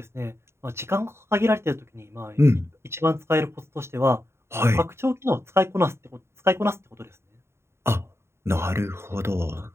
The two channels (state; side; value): late; left; 0.13 ms